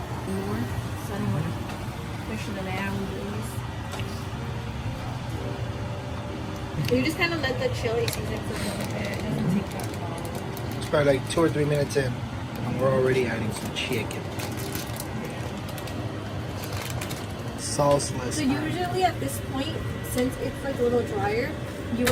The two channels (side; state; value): both; identical; correlation 1.00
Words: More. So I don't want to push the boundaries. You just kind of let the chili season cook a little bit. It doesn't take that long. It's probably like 2 or 3 minutes in, and we're already adding some chicken. Sauceless. So usually at this point, since it's like a little drier, you